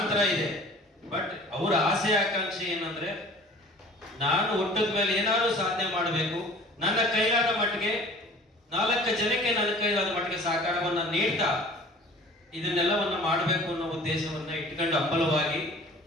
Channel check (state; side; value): normal; both; correlation 0.46